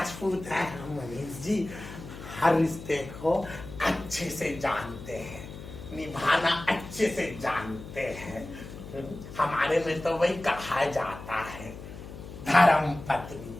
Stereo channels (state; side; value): noise; left; hum, 13 dB below the sound